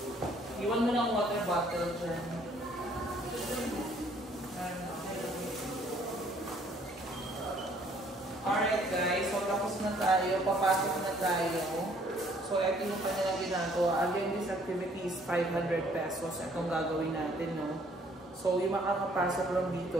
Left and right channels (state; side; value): normal; both; correlation 0.61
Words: Iwan mo lang water bottle dyan. Alright guys, so tapos na tayo. Papasok na tayo. So ito yung kanilang ginagawa. Again, this activity is 500 pesos. Itong gagawin natin, no? So, yung makakapasok lang dito,